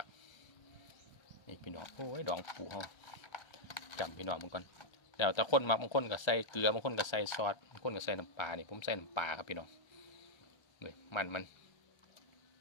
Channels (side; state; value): right; late; 1.3 ms